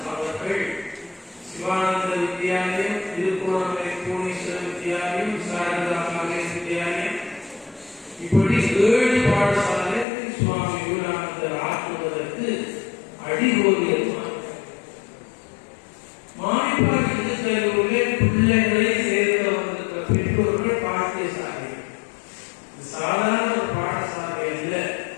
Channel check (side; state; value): right; drops out; at 10.1 s